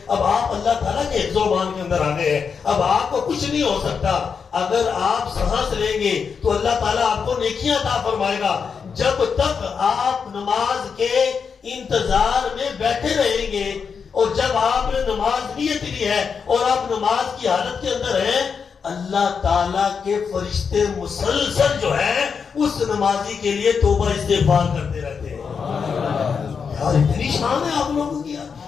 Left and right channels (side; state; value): right; quieter; 6.0 dB